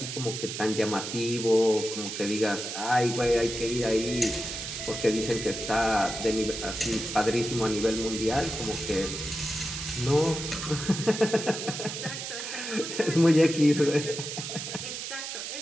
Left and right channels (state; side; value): noise; right; hiss, 6 dB below the sound